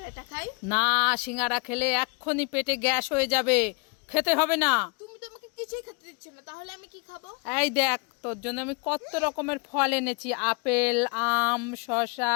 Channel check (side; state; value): right; quieter; 33.5 dB